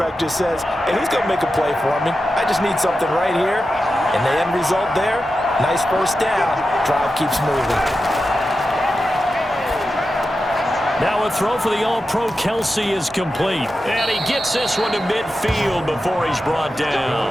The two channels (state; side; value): normal; both; correlation 0.91